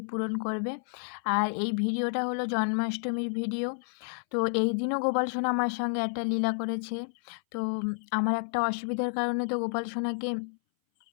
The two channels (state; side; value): silent; right; 58 dB below the other